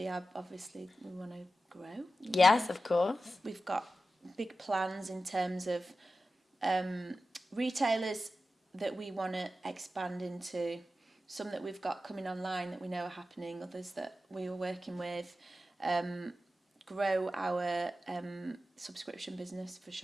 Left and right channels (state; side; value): normal; both; correlation 0.92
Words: obviously we want to grow. Yes, of course. We've got big plans in terms of retailers that we want to expand into. Some that we've got coming online that we know are happening. Others that we are working with. Grow our subscription business for